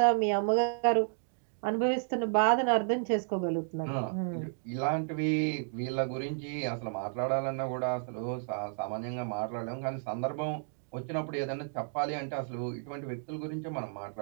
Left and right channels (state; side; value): silent; left; digital silence